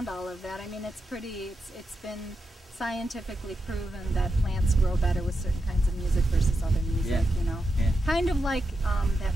all of that. I mean, it's been scientifically proven that plants grow better with certain kinds of music versus other music, you know. Kind of like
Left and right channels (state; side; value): normal; both; correlation 0.87